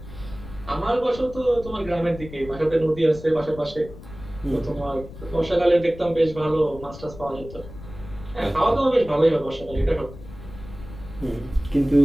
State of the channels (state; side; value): noise; left; rumble, 15 dB below the sound